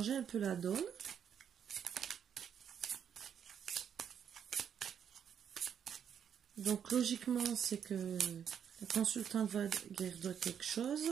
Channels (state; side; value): quieter; left; 8.3 dB